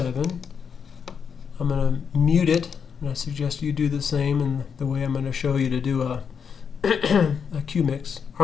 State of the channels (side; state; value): right; quieter; 6.7 dB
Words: I'm going to mute it, and I suggest you do the same in the way I'm going to show you to do a cue mix.